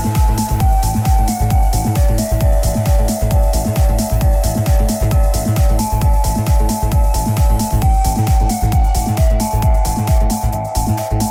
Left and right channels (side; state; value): both; identical; correlation 1.00